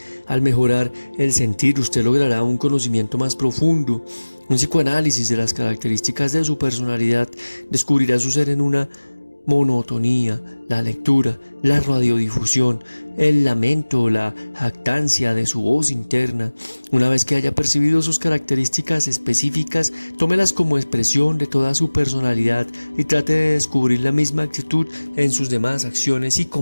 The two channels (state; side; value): inverted; both; correlation -1.00